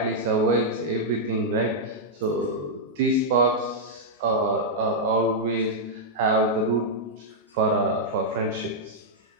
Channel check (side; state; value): both; normal; correlation -0.06